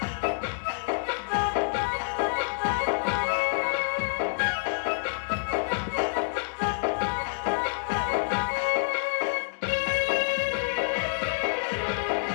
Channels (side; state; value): right; silent; digital silence